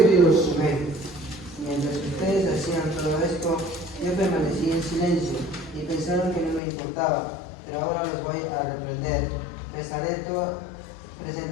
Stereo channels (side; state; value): right; drops out; at 6.6 s